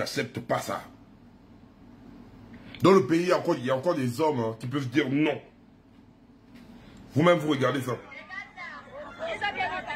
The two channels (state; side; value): identical; both; correlation 1.00